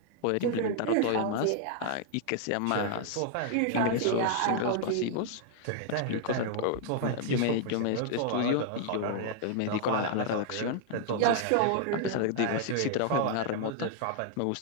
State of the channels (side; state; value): both; different; correlation 0.00